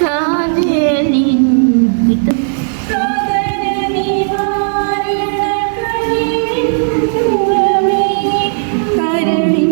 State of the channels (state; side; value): silent; left; digital silence